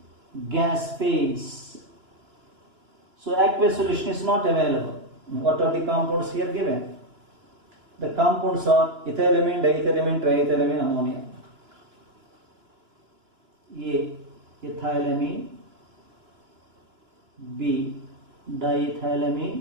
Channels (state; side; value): late; left; 2.9 ms